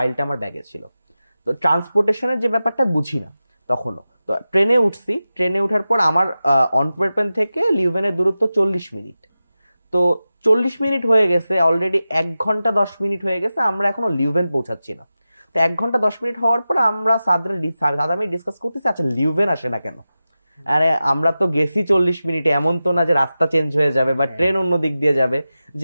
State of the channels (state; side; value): inverted; both; correlation -0.94